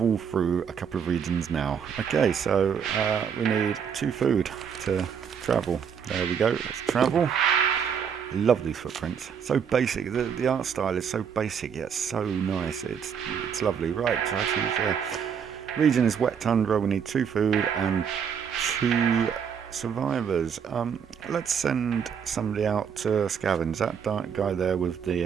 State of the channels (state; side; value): quieter; left; 7.3 dB